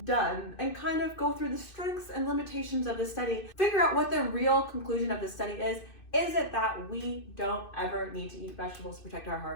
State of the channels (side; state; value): right; late; 2.6 ms